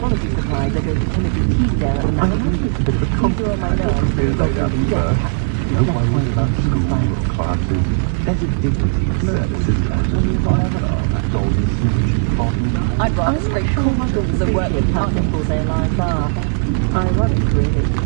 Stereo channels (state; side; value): silent; left; digital silence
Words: supplies, I go to Timothy Teasdale at the I Manor. think it's a bit of a These are on my nerves. They lay down first. No worries about school or classes. There's a dignity in service, isn't there? That golden snitch bottom. I'd rather scrape cool muggles than work with how muggles. simple their lives are. Ironic, really.